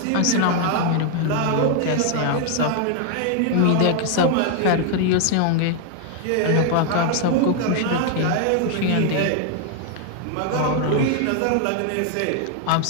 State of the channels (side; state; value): both; different; correlation 0.00